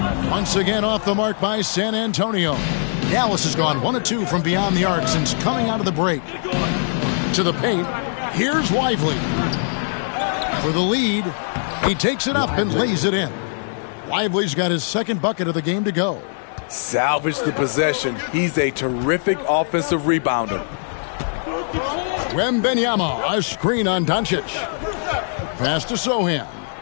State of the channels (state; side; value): silent; right; 65 dB below the other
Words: Once again off the mark by San Antonio. Dallas has gone 1 of 2 from beyond the arc since coming out of the break. To the paint. Here's Lively. For the lead. He takes it up and lays it in. Lively's got his 2nd bucket of the game to go. Salvage the possession. He's a terrific offensive rebounder. Wembanyama, a screen on Doncic. Pass to Sohan.